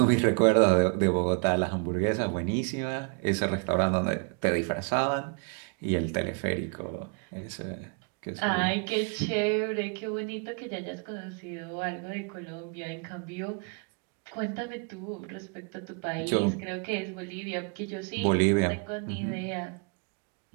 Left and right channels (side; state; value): left; quieter; 36.3 dB